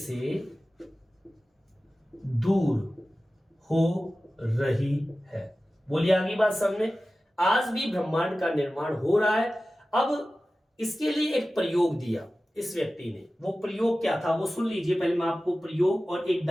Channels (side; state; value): both; normal; correlation 0.95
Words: दूर हो रही है। बोलिए आगे बात समझ। आज भी ब्रह्मांड का निर्माण हो रहा है। अब इसके लिए एक प्रयोग दिया इस व्यक्ति ने। वो प्रयोग क्या था वो सुन लीजिए। पहले मैं आपको प्रयोग और एक